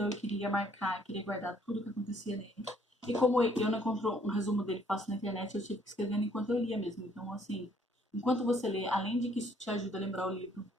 eu queria marcar, queria guardar tudo o que acontecia nele. E como eu não encontro um resumo dele fácil na internet, eu tive que escrever enquanto eu lia mesmo. Então, assim, enquanto você lê, além de que isso te ajuda a lembrar o livro,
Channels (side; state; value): both; normal; correlation 0.64